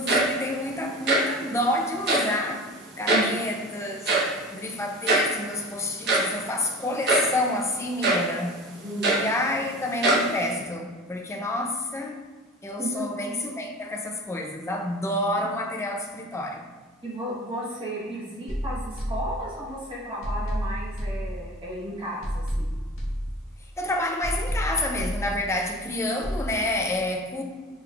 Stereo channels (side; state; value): both; normal; correlation 0.35